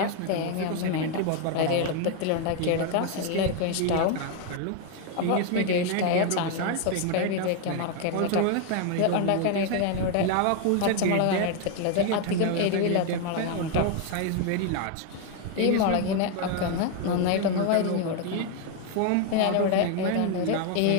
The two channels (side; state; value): both; different; correlation 0.01